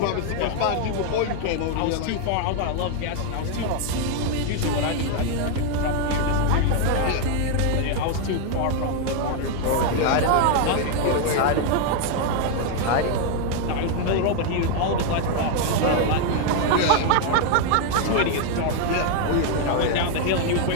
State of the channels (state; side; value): different; both; correlation 0.00